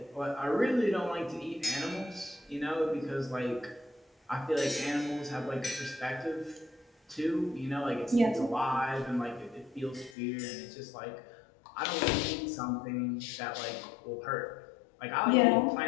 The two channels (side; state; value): right; drops out; at 10.2 s